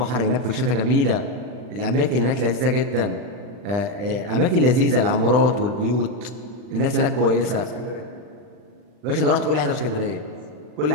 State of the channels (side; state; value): left; late; 40 ms